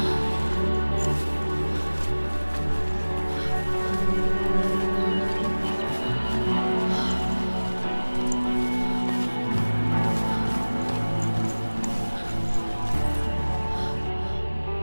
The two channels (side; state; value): both; inverted; correlation -1.00